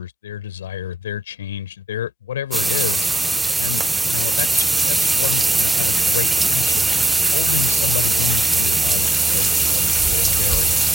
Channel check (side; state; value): both; normal; correlation 0.82